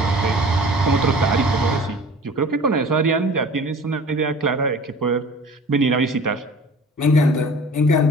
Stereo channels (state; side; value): normal; both; correlation 0.44